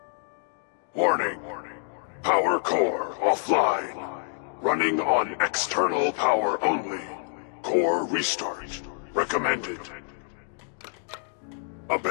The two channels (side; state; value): right; silent; 60 dB below the other